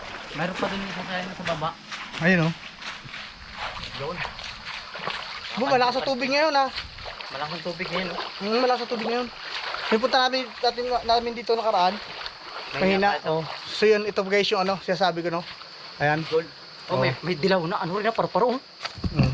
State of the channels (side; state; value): both; identical; correlation 1.00